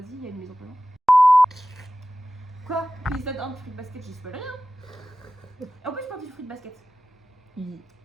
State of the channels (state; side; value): normal; both; correlation 0.96